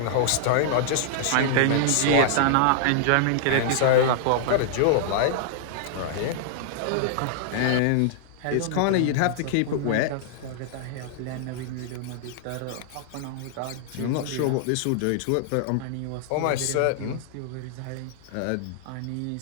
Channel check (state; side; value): different; both; correlation -0.01